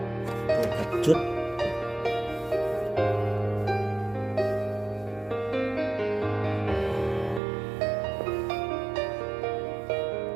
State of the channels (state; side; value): drops out; left; at 7.4 s